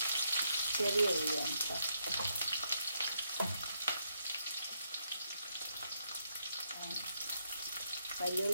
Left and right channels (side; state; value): both; inverted; correlation -0.77